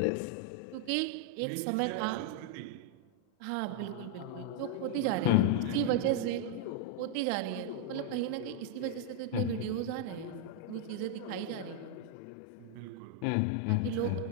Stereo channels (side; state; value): both; different; correlation 0.00